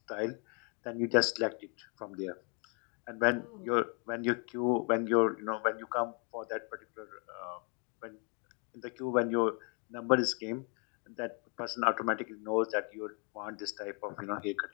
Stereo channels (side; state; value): right; quieter; 36.9 dB